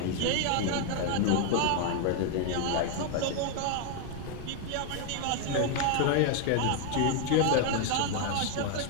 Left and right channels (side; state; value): both; different; correlation 0.00